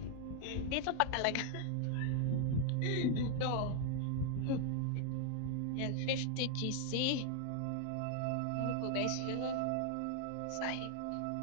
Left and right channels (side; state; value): both; different; correlation 0.00